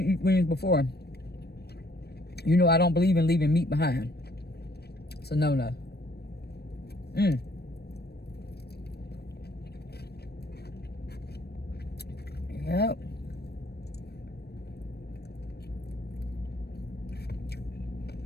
eat wings before, you know I don't believe in leaving meat behind. So no. Yep.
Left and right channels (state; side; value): late; right; 0.47 ms